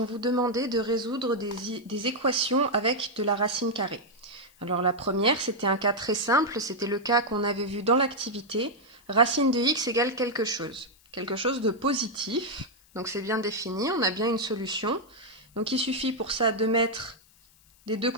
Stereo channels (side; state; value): left; noise; hiss, 29 dB below the sound